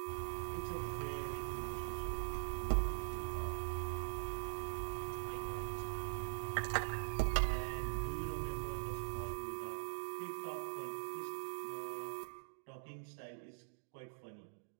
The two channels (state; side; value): silent; left; digital silence